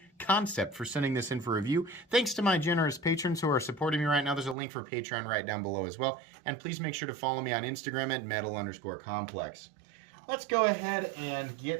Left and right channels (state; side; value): drops out; left; at 4.5 s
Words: Kansept for sending this in for review. Thanks to my generous patrons who are supporting me right now. There's a link for Patreon right down below as well. And please make sure to follow me on Instagram at metal_complex. Let's go ahead and